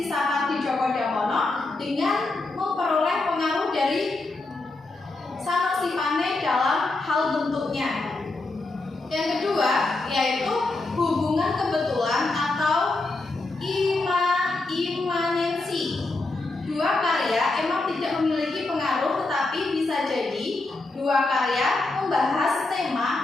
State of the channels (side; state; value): right; quieter; 3.2 dB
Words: Sapardi Djoko Damono dengan memperoleh pengaruh dari Sanosipane dalam hal bentuknya. Yang kedua yaitu hubungan kebetulan atau imanensi. Dua karya emang tidak memiliki pengaruh, tetapi bisa jadi dua karya membahas